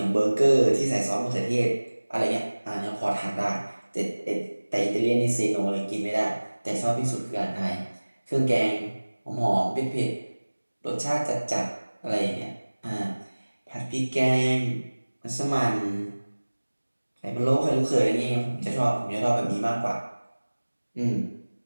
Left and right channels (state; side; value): inverted; both; correlation -1.00